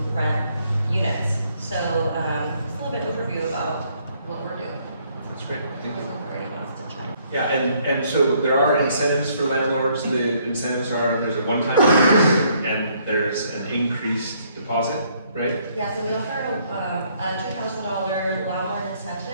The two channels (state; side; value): inverted; both; correlation -0.67